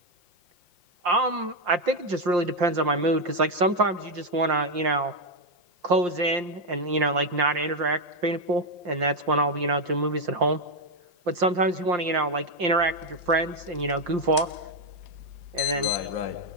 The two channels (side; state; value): left; late; 5.7 ms